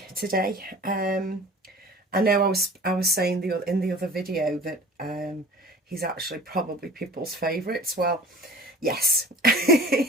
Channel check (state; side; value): normal; both; correlation 0.42